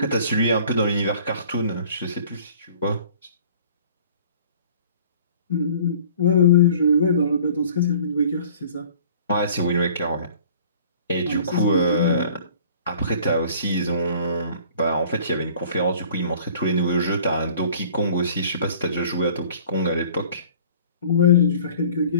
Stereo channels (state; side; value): inverted; both; correlation -0.50